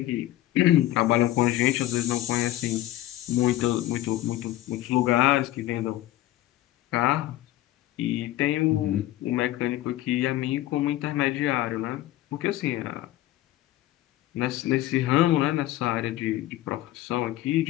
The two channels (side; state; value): right; quieter; 15.0 dB